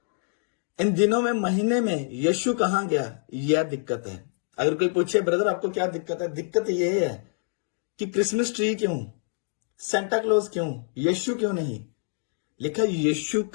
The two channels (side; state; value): right; silent; 61 dB below the other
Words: इन दिनों में, महीने में यीशु कहां गया, यह दिक्कत है। अगर कोई पूछे ब्रदर आपको क्या दिक्कत है, दिक्कत यह है कि क्रिसमस ट्री क्यों, सेंटा क्लॉज क्यों, यीशु क्यों नहीं? लिखा यीशु